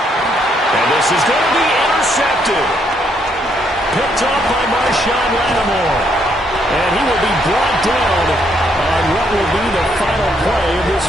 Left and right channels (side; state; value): both; normal; correlation 0.72